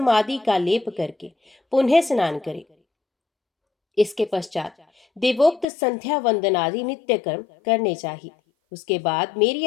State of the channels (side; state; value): right; drops out; at 5.7 s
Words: आदि का लेप करके पुनः स्नान करे। इसके पश्चात देवोक्त संध्या वंदन आदि नित्य कर्म करने चाहिए। उसके बाद मेरी